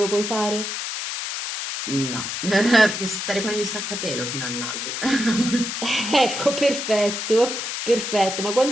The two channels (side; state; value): left; noise; hiss, 4 dB below the sound